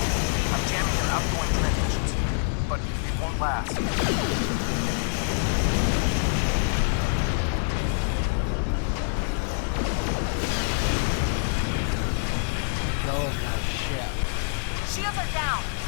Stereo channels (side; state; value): right; silent; digital silence